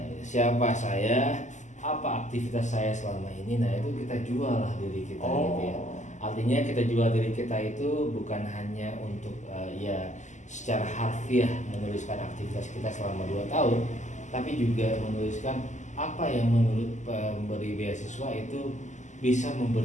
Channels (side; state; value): right; late; 0.34 ms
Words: siapa saya, apa aktivitas saya selama ini. Nah itu kita jual lah diri kita gitu ya. Artinya kita jual diri kita itu bukan hanya untuk secara harfiah menuliskan aktivitas kita selama 2 tahun, tapi juga menuliskan apa yang menurut pemberi beasiswa itu bisa